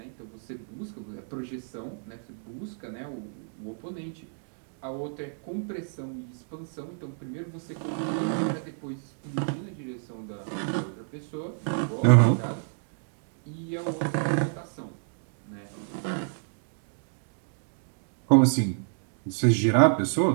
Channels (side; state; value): left; silent; digital silence